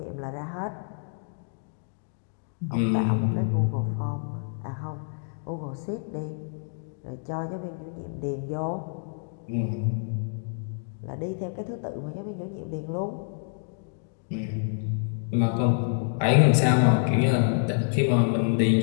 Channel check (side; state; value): right; silent; digital silence